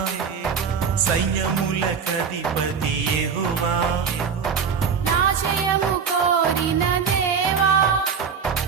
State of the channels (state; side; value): quieter; left; 6.3 dB